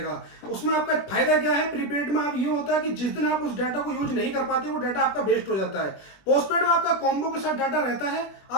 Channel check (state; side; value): late; right; 21 ms